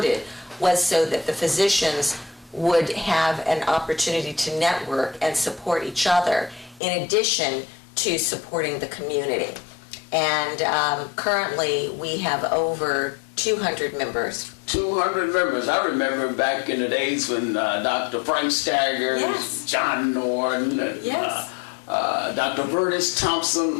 was so that the physicians would have an opportunity to network and support each other in addition to supporting the community. And currently we have over 200 members. 200 members. I remember back in the days when Dr. Frank Staggers, yes. John Norton, and yes. Dr. Burtis Thompson,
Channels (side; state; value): right; drops out; at 6.8 s